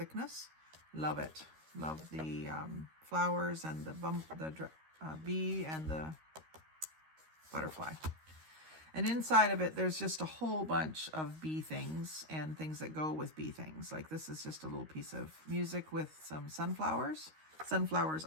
Love it. Love the flowers and the bee and the butterfly. And inside of it, there's just a whole bunch of bee things and things that go with bee things. Like this is just a little piece of music with some sunflowers. Sunflowers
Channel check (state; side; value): late; left; 13 ms